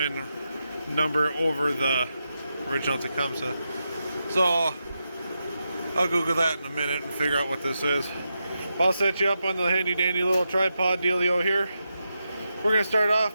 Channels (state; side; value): inverted; both; correlation -0.87